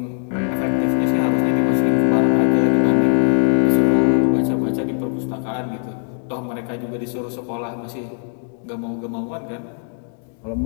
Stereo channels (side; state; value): right; silent; 56 dB below the other